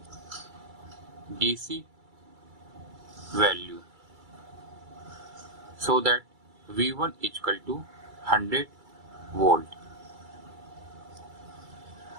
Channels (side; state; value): left; late; 2.3 ms